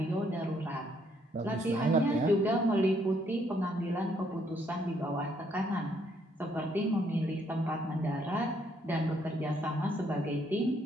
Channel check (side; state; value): both; normal; correlation 0.70